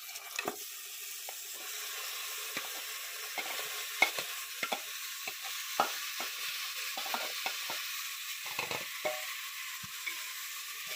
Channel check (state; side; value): identical; both; correlation 1.00